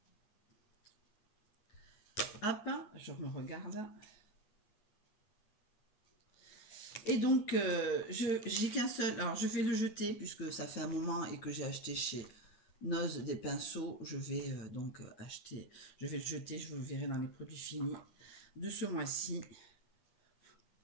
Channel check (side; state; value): right; late; 9.2 ms